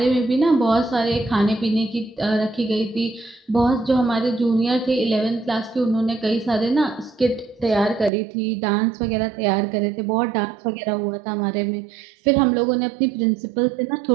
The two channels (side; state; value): left; drops out; at 8.1 s